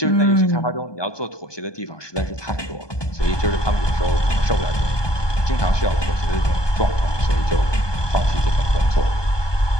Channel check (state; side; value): late; right; 1.2 ms